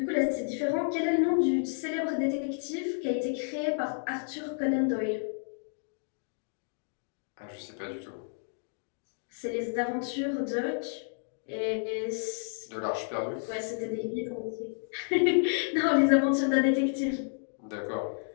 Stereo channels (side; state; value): right; silent; digital silence